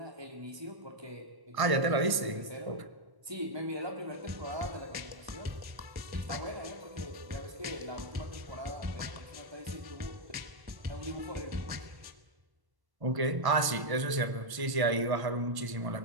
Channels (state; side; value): late; left; 1.1 ms